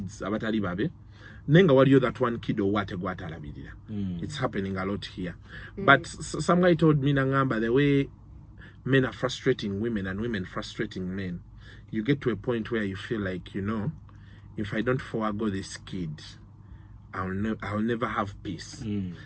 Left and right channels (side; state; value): both; identical; correlation 1.00